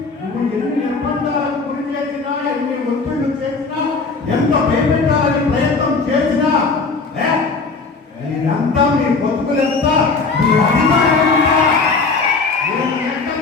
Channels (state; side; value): quieter; right; 4.2 dB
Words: నువ్వు ఎన్ని నిర్బంధాలకు గురి చేసినా, ఎన్ని ఒత్తిళ్లు చేసినా, ఎంత భయపెట్టాలని ప్రయత్నం చేసినా, మీరంతా మీ బతుకులంతా మీ అధికారం